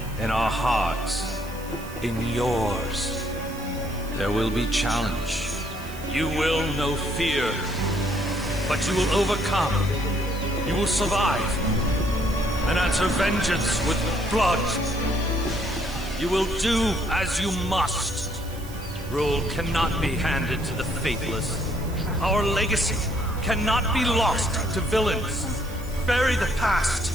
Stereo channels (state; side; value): noise; right; hiss, 18 dB below the sound